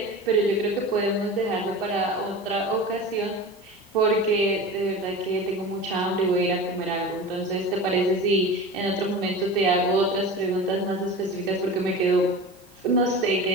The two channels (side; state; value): right; noise; hiss, 29 dB below the sound